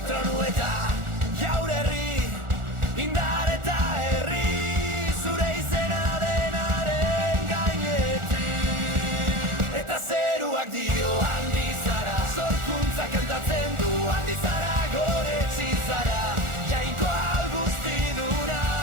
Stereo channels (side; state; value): left; late; 1.4 ms